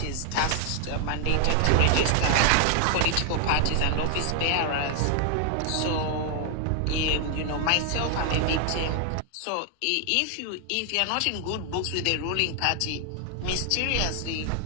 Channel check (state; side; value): different; both; correlation 0.00